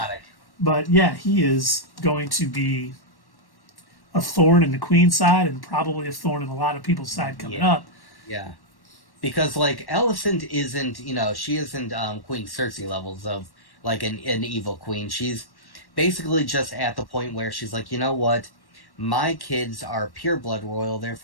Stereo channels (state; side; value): late; right; 1.1 ms